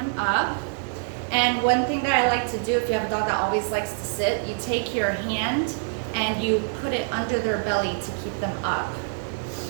up, and one thing that I like to do if you have a dog that always likes to sit, you take your hand and you put it under their belly to keep them up.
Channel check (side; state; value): left; silent; digital silence